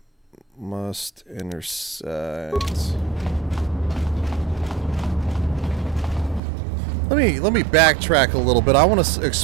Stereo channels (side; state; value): left; drops out; at 6.4 s